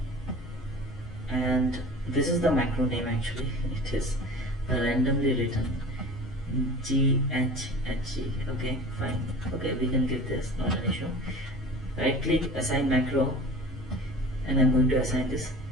and this is the macro name actually. It is randomly written GHHG. Okay, fine. Okay, we can give this, not an issue. Right click, assign macro, and I'm going to assign this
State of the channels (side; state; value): both; normal; correlation 0.40